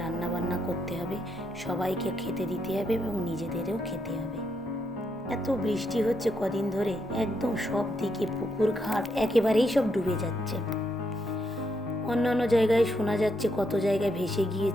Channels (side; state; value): both; normal; correlation 0.79